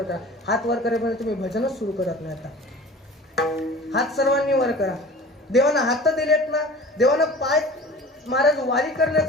करा. हात वर करेपर्यंत तुम्ही भजनच सुरू करत नाही. आता हात सर्वांनी वर करा. देवानं हात दिलेत ना, देवानं पाय महाराज वारी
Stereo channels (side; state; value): both; normal; correlation 0.41